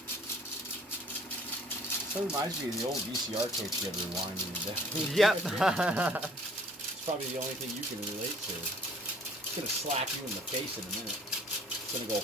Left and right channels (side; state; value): both; normal; correlation 0.54